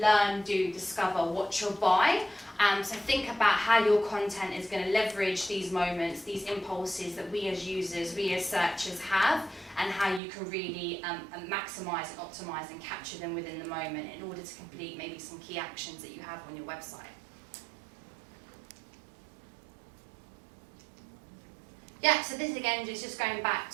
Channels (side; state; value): left; drops out; at 10.2 s